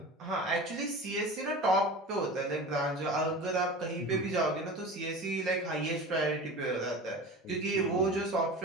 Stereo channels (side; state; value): both; normal; correlation 0.33